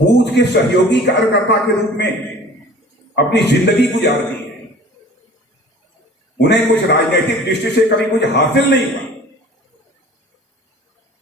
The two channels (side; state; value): both; normal; correlation 0.45